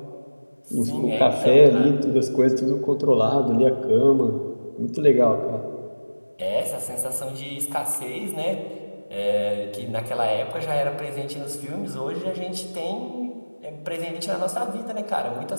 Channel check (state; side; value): inverted; both; correlation -1.00